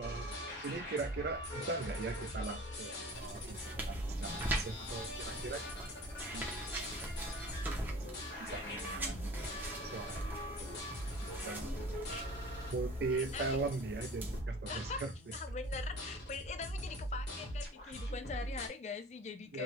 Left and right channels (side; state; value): both; normal; correlation 0.43